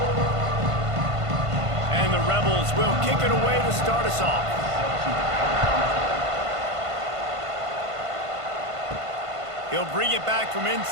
And the Rebels will kick it away to start us off. He'll bring it back from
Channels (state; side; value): late; left; 1.5 ms